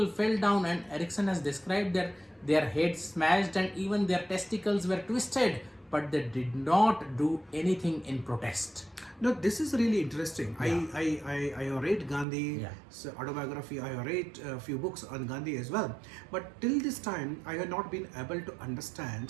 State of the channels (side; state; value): left; drops out; at 12.2 s